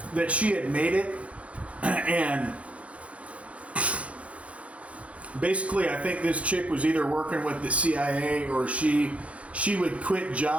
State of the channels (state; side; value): late; left; 0.064 ms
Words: And basically, I think this chick was either working with the CIA or she would quit